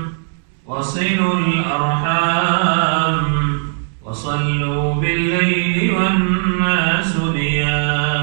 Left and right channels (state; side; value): silent; left; digital silence